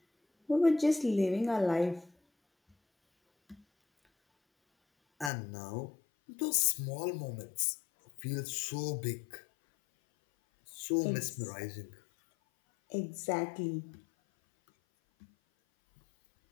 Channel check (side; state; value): right; drops out; at 5.3 s